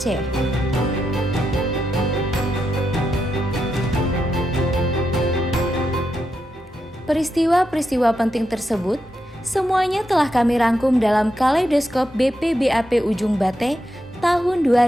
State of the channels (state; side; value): normal; both; correlation 0.85